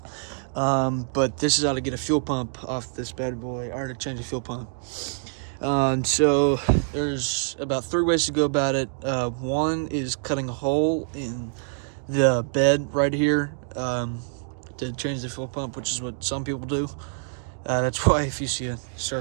But this is how to get a fuel pump off this bad boy, or to change a fuel pump. So there's about 3 ways to go about it. One is cutting a hole in the bed right here to change the fuel pump, which is what some people do. That's why if you see a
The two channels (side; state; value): left; silent; digital silence